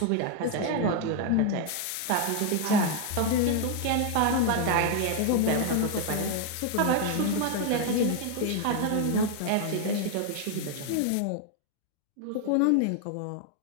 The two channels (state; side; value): different; both; correlation 0.00